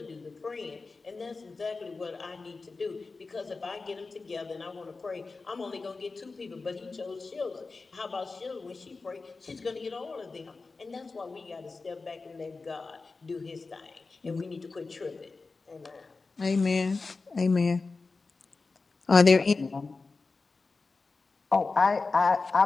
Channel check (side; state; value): right; quieter; 4.0 dB